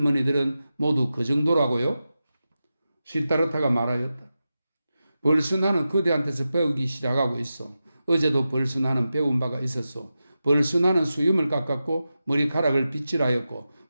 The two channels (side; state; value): both; inverted; correlation -0.92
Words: 모두 그 정도라고요? 시타르타가 말하였다. 벌써 나는 그대한테서 배우기 시작하고 있어. 어제도 벌써 나는 배운 바가 있었소. 벌써 나는 수염을 깎았고 머리카락을 빗질하였고